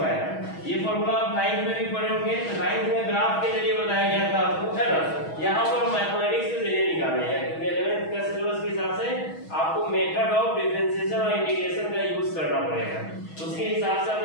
ये फॉर्मूला आप 9th में भी पढ़े होंगे, तो 9th में ग्राफ के जरिए बताया गया था आपको, है ना। यहाँ पर मैथमेटिक्स के जरिए निकालने हैं, क्योंकि 11th का सिलेबस के हिसाब से आपको मेथड ऑफ डिफरेंशिएशन और इंटीग्रेशन का यूज करना पड़ेगा, उसके हिसाब से हम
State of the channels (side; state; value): right; late; 6.2 ms